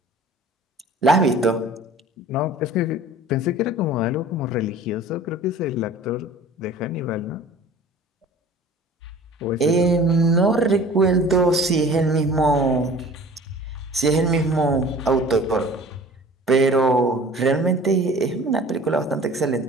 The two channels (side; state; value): both; normal; correlation 0.45